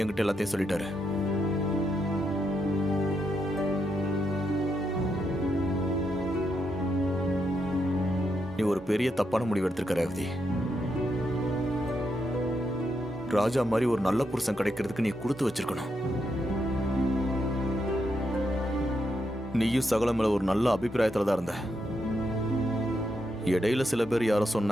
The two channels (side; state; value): both; normal; correlation 0.81